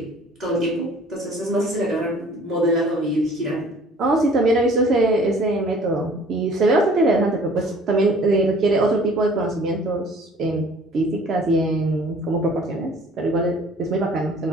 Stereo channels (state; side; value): normal; both; correlation 0.52